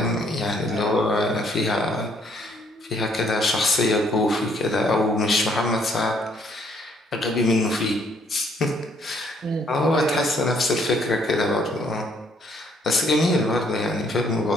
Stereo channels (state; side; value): normal; both; correlation 0.66